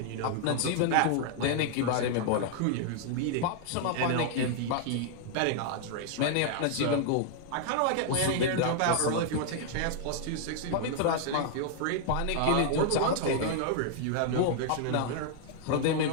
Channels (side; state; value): both; different; correlation 0.00